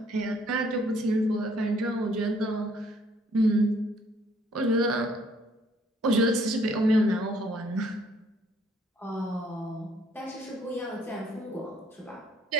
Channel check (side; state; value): both; normal; correlation 0.64